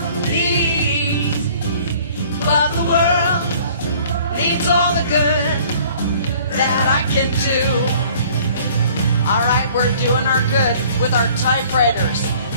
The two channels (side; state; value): both; inverted; correlation -0.53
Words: needs, but the world needs all the good that I can do. All right, we're doing our good with our typewriters,